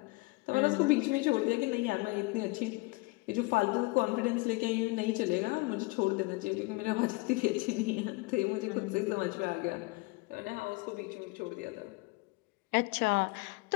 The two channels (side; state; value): right; quieter; 24.5 dB